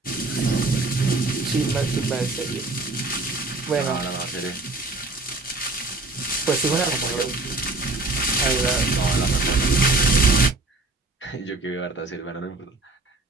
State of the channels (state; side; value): quieter; left; 3.0 dB